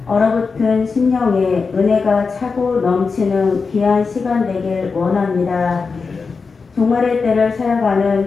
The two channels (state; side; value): quieter; right; 4.8 dB